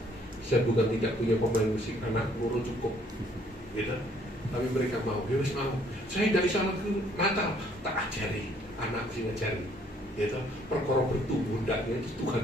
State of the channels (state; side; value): normal; both; correlation 0.63